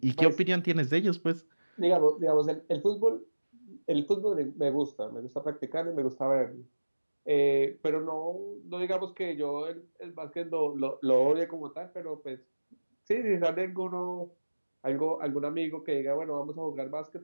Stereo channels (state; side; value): inverted; both; correlation -1.00